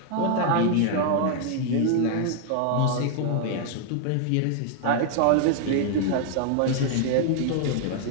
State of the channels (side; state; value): both; different; correlation 0.00